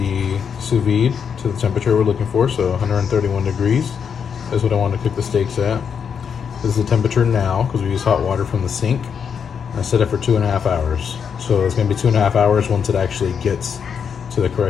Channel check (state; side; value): quieter; right; 7.0 dB